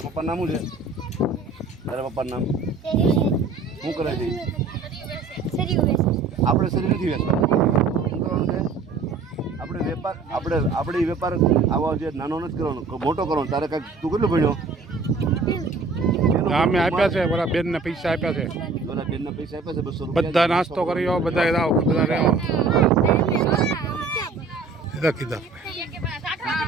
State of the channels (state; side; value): quieter; left; 4.2 dB